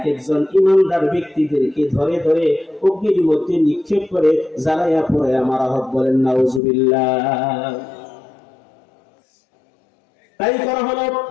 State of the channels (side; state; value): right; drops out; at 6.6 s